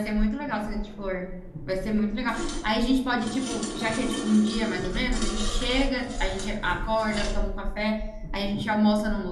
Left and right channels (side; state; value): both; identical; correlation 1.00